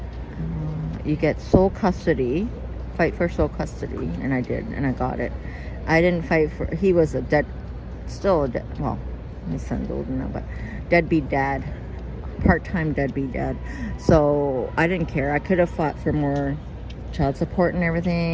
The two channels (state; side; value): identical; both; correlation 1.00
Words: you get sole custody, fight for sole custody, and I did, and I got it. I didn't fight for, he was still a dead, well, my son's older now, but deadbeat dad, part-time deadbeat dad. So I didn't care. I could have fought for more child support and